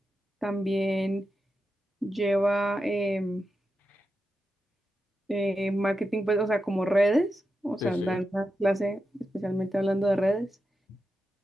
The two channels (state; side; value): normal; both; correlation 0.88